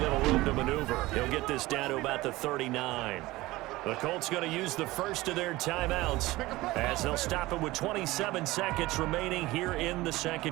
room to maneuver. He'll get this down to about the 39. The Colts going to use the first of their timeouts as they'll stop it with 27 seconds remaining here in the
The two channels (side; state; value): left; quieter; 19.1 dB